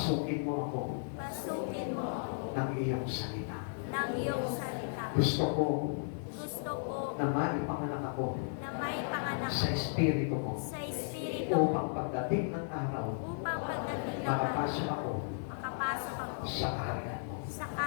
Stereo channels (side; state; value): right; silent; digital silence